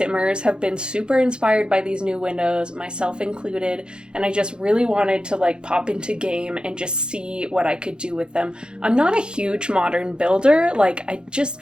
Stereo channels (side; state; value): left; late; 0.050 ms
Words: have been super inspired by these new windows, myself included, and I just really wanted to pop into game and just see what I could do with them. I'm not a huge modern builder, I just